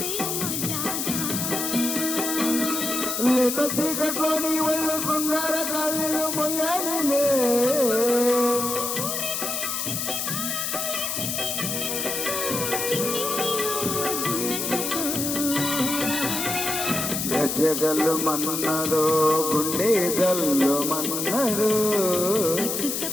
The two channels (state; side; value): noise; left; hiss, 2 dB below the sound